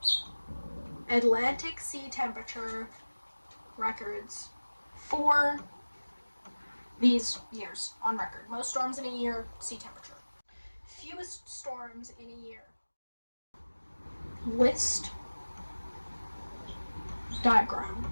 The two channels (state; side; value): inverted; both; correlation -1.00